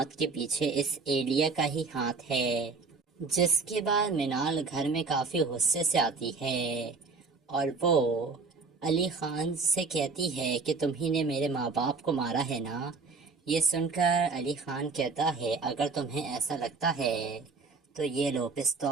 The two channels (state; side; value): quieter; left; 4.4 dB